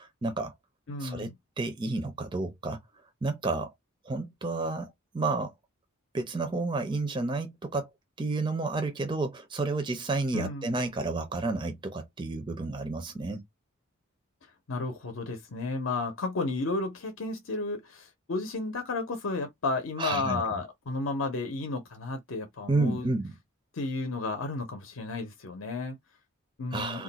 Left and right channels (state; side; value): normal; both; correlation 0.42